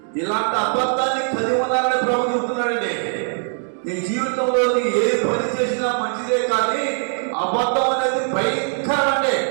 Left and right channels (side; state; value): left; silent; 65 dB below the other